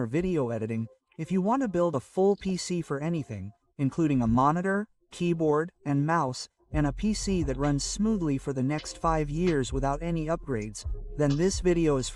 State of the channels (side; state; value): both; identical; correlation 1.00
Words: video editing, if you want to build a full PC for anything, including a monitor, keyboard, and mouse, and a PC that runs smoothly for the next 5 years without any upgrades, then this video is